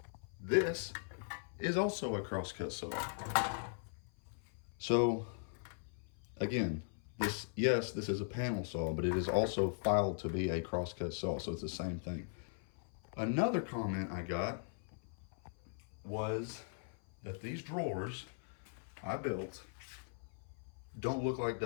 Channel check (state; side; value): silent; right; 51 dB below the other